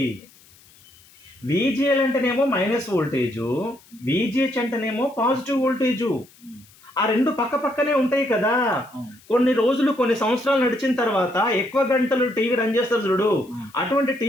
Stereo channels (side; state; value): left; noise; hiss, 27 dB below the sound